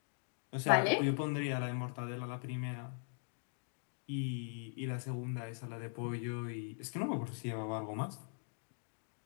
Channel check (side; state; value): right; silent; digital silence